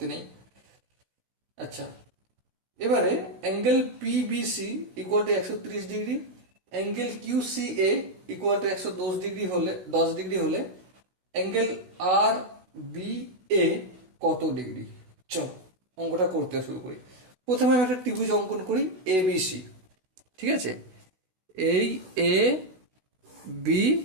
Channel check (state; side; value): late; left; 16 ms